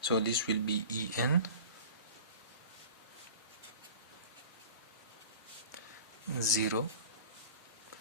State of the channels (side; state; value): both; inverted; correlation -0.41